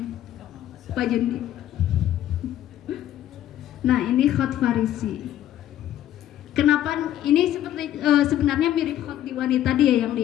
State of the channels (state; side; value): quieter; right; 12.1 dB